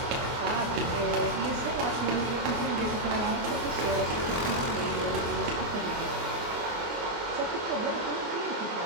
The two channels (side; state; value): left; late; 24 ms